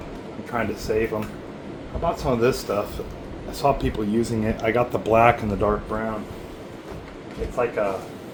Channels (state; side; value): identical; both; correlation 1.00